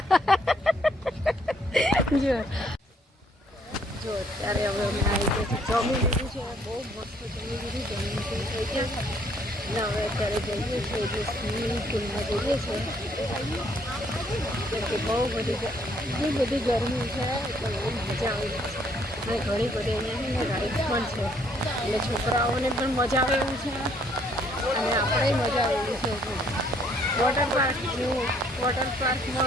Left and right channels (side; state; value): both; normal; correlation 0.66